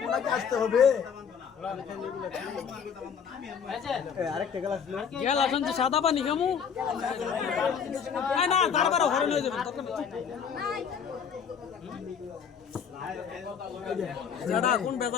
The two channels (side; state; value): right; quieter; 7.0 dB